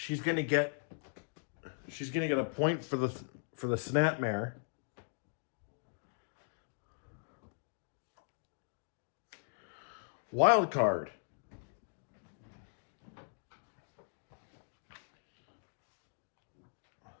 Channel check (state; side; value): silent; right; digital silence